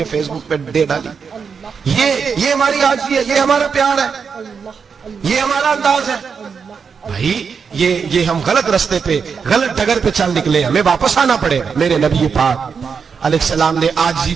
فیس بک پہ دے ڈالی. یہ ہماری عاجزی ہے, یہ ہمارا پیار ہے, یہ ہمارا انداز ہے. بھائی یہ ہم غلط رستے پہ, غلط ڈگر پہ چل نکلے, ہمیں واپس آنا پڑے. میرے نبی پاک علیہ السلام نے عاجزی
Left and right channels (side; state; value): left; quieter; 6.0 dB